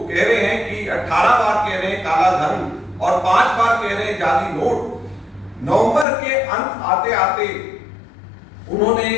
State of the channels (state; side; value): drops out; right; at 6.1 s